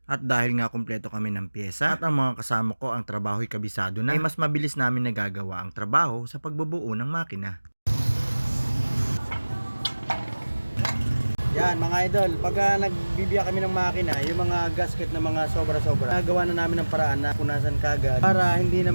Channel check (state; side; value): inverted; both; correlation -1.00